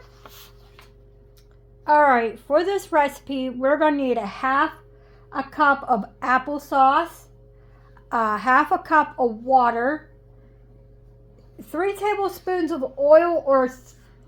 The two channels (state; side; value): identical; both; correlation 1.00